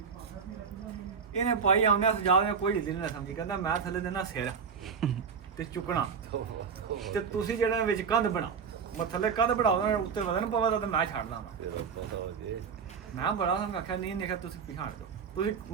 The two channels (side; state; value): left; quieter; 6.2 dB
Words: ਇਹਨੇ ਪਾਈ ਆਉਂਦੇ ਸਜਾਦ ਨੇ ਕੋਈ ਹਿੱਲ ਨਹੀਂ ਸਮਝੀ ਕਹਿੰਦਾ ਮੈਂ ਥੱਲੇ ਦੇਣਾ ਸਿਰ ਤੇ ਚੁੱਕਣਾ ਤੇ ਤੁਸੀਂ ਜਿਹੜਾ ਵਿੱਚ ਕੰਧ ਬਣਾਓ ਮੈਂ ਥੱਲੇ ਕੰਧ ਬਣਾਓ ਦੇਣਾ ਉੱਤੇ ਵਧਣ ਪਵੇ ਤਾਂ ਮੈਂ ਛੱਡ ਦਾਂਗਾ ਮੈਂ ਬੜਾ ਸੰਗ ਆਖਿਆ ਨਹੀਂ ਨਿਕਾ ਤੁਸੀਂ ਪਿਛਾੜ ਦਿਓ ਤੁਸੀਂ